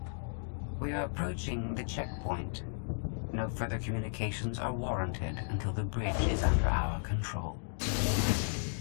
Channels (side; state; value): right; silent; digital silence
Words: We are approaching the checkpoint. No further communications are warranted until the bridge is under our control.